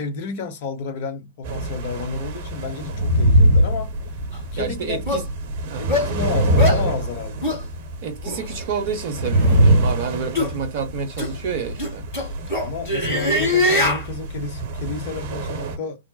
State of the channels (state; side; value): inverted; both; correlation -0.45